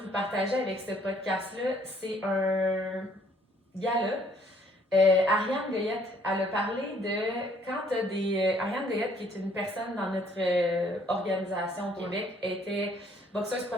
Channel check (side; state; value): both; normal; correlation 0.63